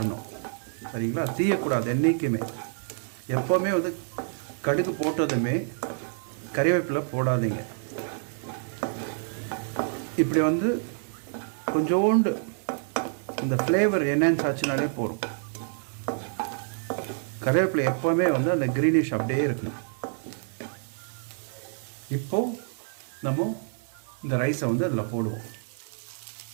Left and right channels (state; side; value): silent; left; digital silence